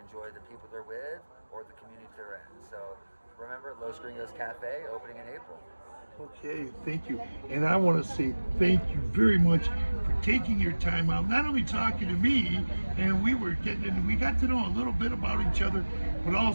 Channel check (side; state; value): both; inverted; correlation -1.00